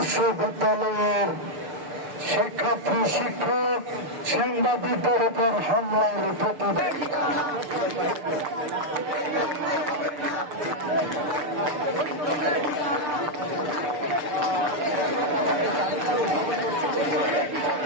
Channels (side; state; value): left; late; 6.7 ms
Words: শিক্ষার্থী, শিক্ষক, সাংবাদিকদের উপর হামলার প্রতিবাদ।